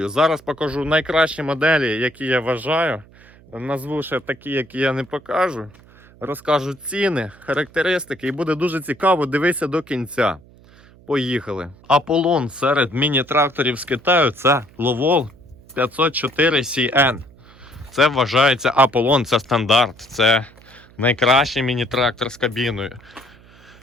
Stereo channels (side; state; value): right; noise; hum, 25 dB below the sound